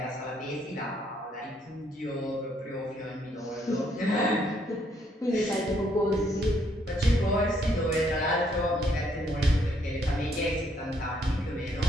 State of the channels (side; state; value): both; normal; correlation 0.71